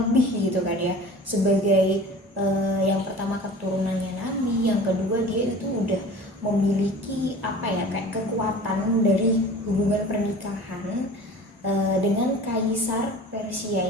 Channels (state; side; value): normal; both; correlation 0.41